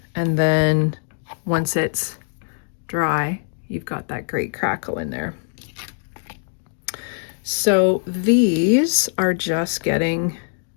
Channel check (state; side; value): silent; right; digital silence